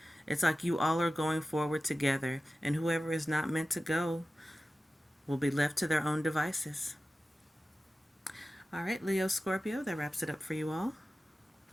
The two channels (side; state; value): both; normal; correlation 0.95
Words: It's like you all are going forward together, and whoever is not meant to go will be left to their own devices. All right, Leo, Scorpio, that wraps it up for you all.